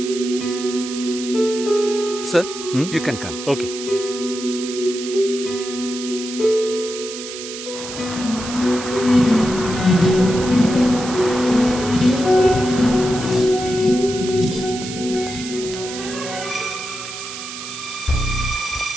Sir, you can come. Okay.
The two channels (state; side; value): noise; right; hiss, 10 dB below the sound